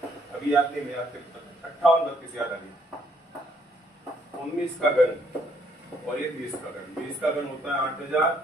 अभी याद नहीं, मैं याद करता हूँ, 58 32 याद आ गया। 19 का घन और ये 20 का घन, 20 का घन होता है 8000,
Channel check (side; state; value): both; normal; correlation 0.68